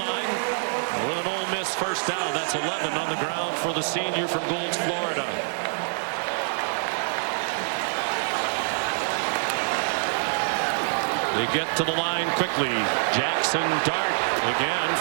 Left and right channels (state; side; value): silent; left; 58 dB below the other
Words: with an Ole Miss first down. That's 11 on the ground for the senior from Goulds, Florida. They get to the line quickly. Jackson Dart again